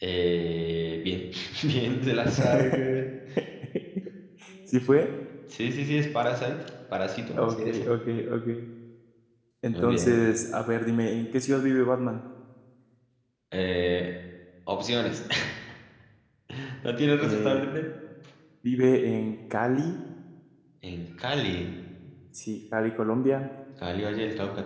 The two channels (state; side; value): identical; both; correlation 1.00